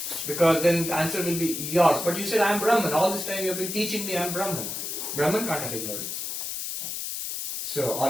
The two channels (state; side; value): noise; left; hiss, 4 dB below the sound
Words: Because then the answer will be yours. But you said, I am Brahman. All this time you have been teaching me I am Brahman. Brahman can't have ignorance. So,